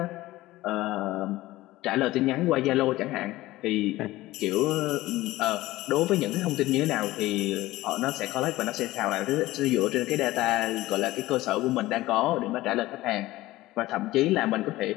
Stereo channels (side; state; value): right; quieter; 17.6 dB